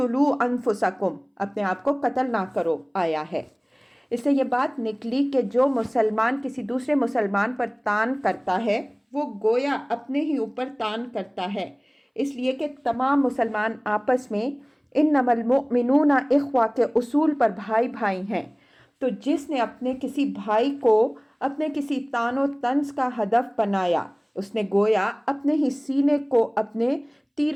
انفسکم، اپنے آپ کو قتل نہ کرو آیا ہے۔ اس سے یہ بات نکلی کہ جو مسلمان کسی دوسرے مسلمان پر تان کرتا ہے وہ گویا اپنے ہی اوپر تان کرتا ہے، اس لیے کہ تمام مسلمان آپس میں انما المؤمنون اخوہ کے اصول پر بھائی بھائی ہیں، تو جس نے اپنے کسی بھائی کو اپنے کسی تان و طنز کا ہدف بنایا اس نے گویا اپنے ہی سینے کو اپنے تیر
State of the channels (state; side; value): identical; both; correlation 1.00